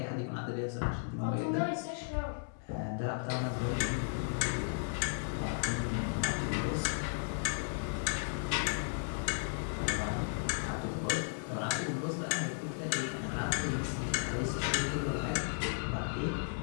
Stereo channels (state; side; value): silent; right; digital silence